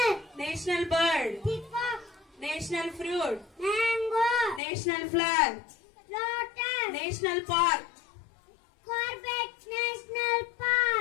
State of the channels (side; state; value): right; drops out; at 4.6 s